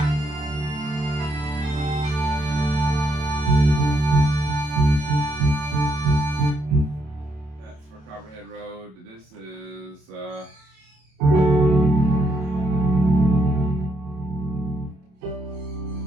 That's for Copperhead Road. This is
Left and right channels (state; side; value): late; left; 27 ms